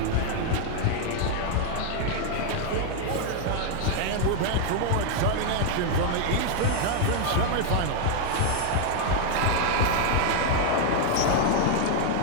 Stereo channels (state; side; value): different; both; correlation 0.00